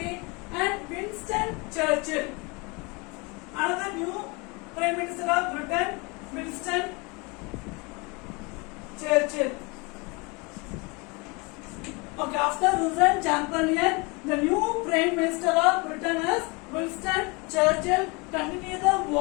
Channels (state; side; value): quieter; right; 28.3 dB